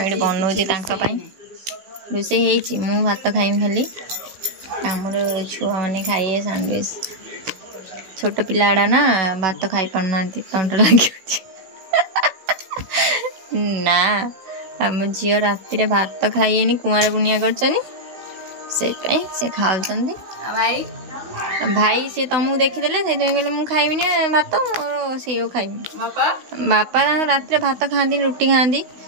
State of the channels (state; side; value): late; left; 16 ms